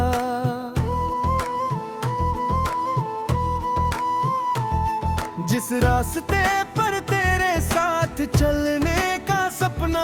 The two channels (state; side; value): identical; both; correlation 1.00